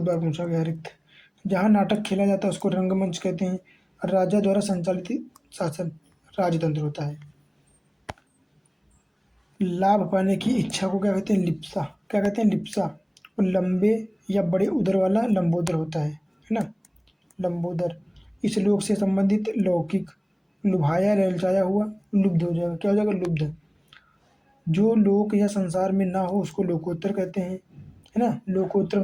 बार पूछा गया, रिक्त। जहाँ नाटक खेला जाता है उसको रंगमंच कहते हैं। राजा द्वारा संचालित शासन राजतंत्र होता है। लाभ पाने की इच्छा को क्या कहते हैं, लिप्सा, क्या कहते हैं, लिप्सा। और लंबे या बड़े उदर वाला लंबोदर होता है ना, लंबोदर। इस लोक से संबंधित लौकिक। लुभाया ललचाया हुआ लुब्ध हो जाएगा, क्या हो जाएगा, लुब्ध। जो लोक या संसार में ना हो उसको लोकोत्तर कहते हैं, है ना। लोकोत्तर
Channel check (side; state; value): both; identical; correlation 1.00